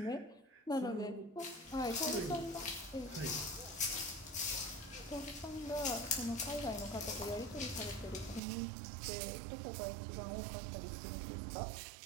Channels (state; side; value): drops out; left; at 8.4 s